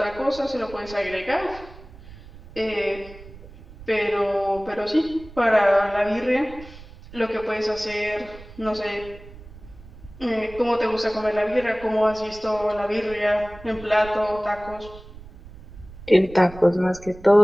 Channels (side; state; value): right; noise; rumble, 18 dB below the sound